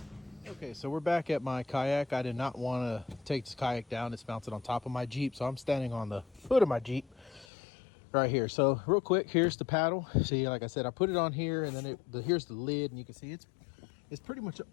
Okay, so we're back at my Kayak. I did not want to take this Kayak down. It's mounted on top of my Jeep, so I'm standing on the foot of my Jeep right here. So real quick, here's the paddle. See, like I said, I put it on here, and then here's the lid, and you can see it's pretty much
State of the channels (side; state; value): right; drops out; at 7.5 s